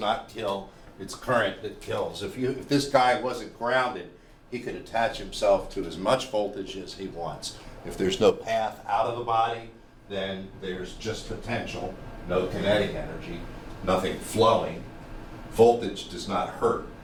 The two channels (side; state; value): both; identical; correlation 1.00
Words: kill, it's current that kills. If this guy wasn't grounded, he could attach himself to as much voltage as he wants. If there's no path out of the body, then there's just potential, no kinetic energy, nothing flowing. Voltage does not hurt,